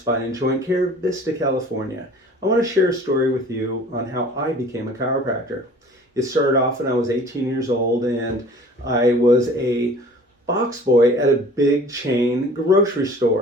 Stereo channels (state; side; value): normal; both; correlation 0.47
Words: Spine and Joint Care, Vista, California. I want to share a story with you on how I became a chiropractor. It started off when I was 18 years old and I was a box boy at a big chain grocery